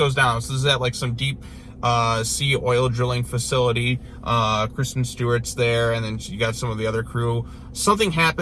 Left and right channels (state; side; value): identical; both; correlation 1.00